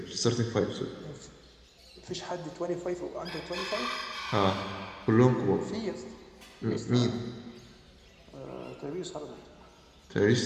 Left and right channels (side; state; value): both; identical; correlation 1.00